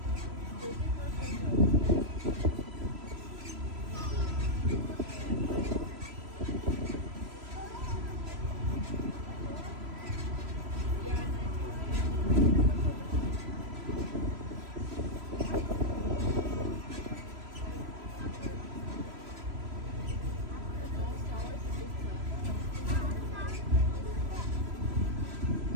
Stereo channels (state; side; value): late; left; 3.0 ms